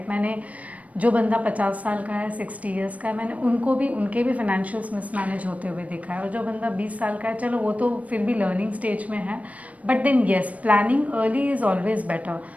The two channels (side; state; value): left; late; 0.068 ms